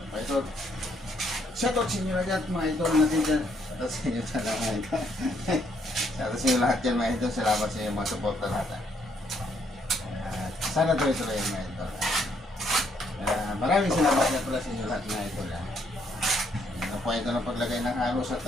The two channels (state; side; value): normal; both; correlation 0.71